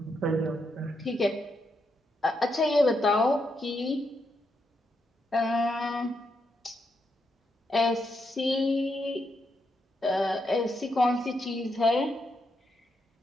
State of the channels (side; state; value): both; normal; correlation 0.81